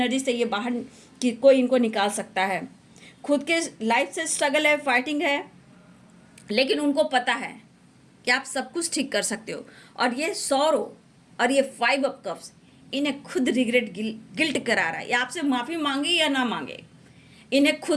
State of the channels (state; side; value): identical; both; correlation 1.00